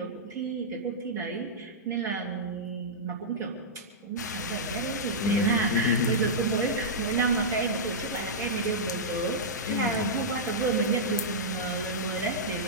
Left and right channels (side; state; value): both; normal; correlation -0.12